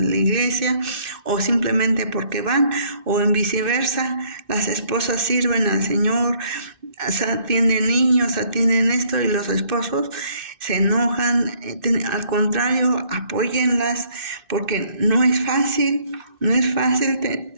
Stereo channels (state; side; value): late; left; 2.6 ms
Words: iglesia, o simplemente porque van, o en viceversa, las esposas sirven al Señor, atienden niños, atienden esto, y los esposos se enojan. Al contrario, apóyenlas, porque no es fácil